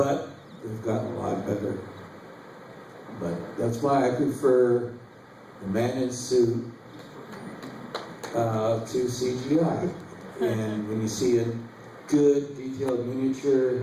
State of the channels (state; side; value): identical; both; correlation 1.00